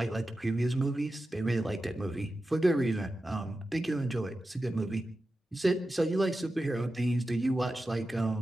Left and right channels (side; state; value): both; normal; correlation 0.92